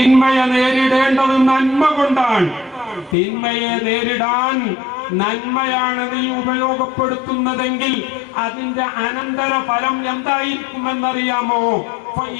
നേരിടേണ്ടത് നന്മ കൊണ്ടാണ്. തിന്മയെ നേരിടാൻ നന്മയാണ് നീ ഉപയോഗപ്പെടുത്തുന്നതെങ്കിൽ അതിന്റെ അനന്തര ഫലം എന്തായിരിക്കുമെന്നറിയാമോ?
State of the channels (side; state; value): right; drops out; at 3.2 s